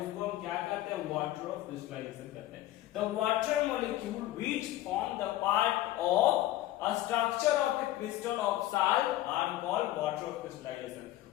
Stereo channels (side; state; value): right; quieter; 15.0 dB